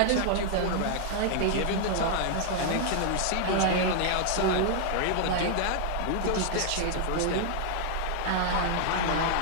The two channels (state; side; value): different; both; correlation 0.00